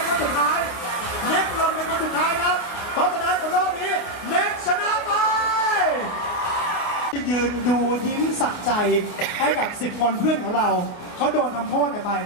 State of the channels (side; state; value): right; late; 29 ms